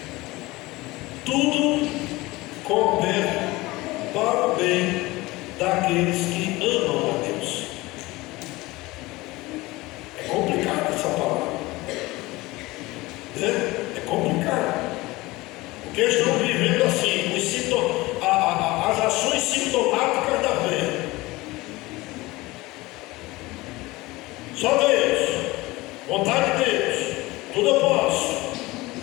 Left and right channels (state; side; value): quieter; right; 20.7 dB